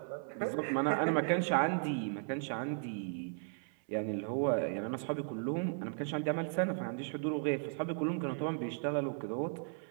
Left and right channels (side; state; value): left; silent; 54 dB below the other